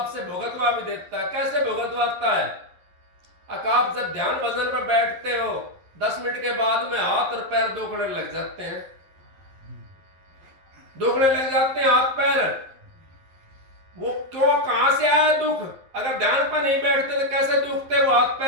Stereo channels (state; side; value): late; left; 11 ms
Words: भुगतवा भी देता है। कैसे भुगतवाता है? आप जब ध्यान भजन पर बैठते हो, 10 मिनट के बाद में हाथ और पैर दुखने लग जाते हैं, दुखने लग जाते हैं हाथ पैर। वो क्यों, कहां से आया दुख? अगर ध्यान पर नहीं बैठते तो कैसे दुखते वो हाथ